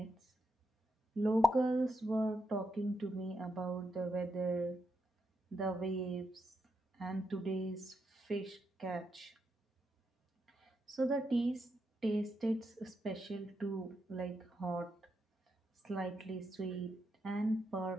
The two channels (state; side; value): normal; both; correlation 0.82